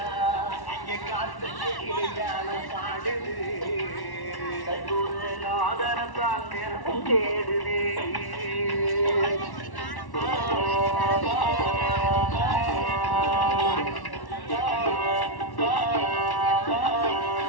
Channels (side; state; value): right; late; 1.1 ms